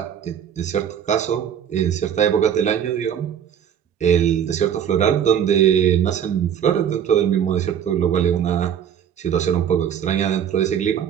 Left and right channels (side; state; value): left; quieter; 8.9 dB